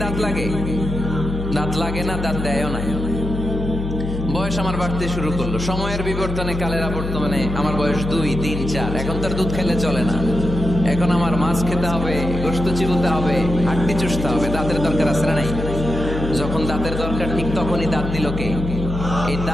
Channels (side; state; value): left; noise; hum, 5 dB below the sound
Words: দাঁত লাগে? দাঁত লাগে না, দাঁত দেয়ও না। বয়স আমার বাড়তে শুরু করলো, সময়ের বিবর্তনে, কালের আবর্তমানে আমার বয়স 2, 3, 4। এখন তার দুধ খেলে চলে না, এখন আমার মাছ খেতে হবে, গোশত চিবোতে হবে, হাড্ডি চুষতে হবে। দাঁতের দরকার আছে না নাই? যখন দাঁতের দরকার ঠিক তখনই দাঁত দিল কে? এই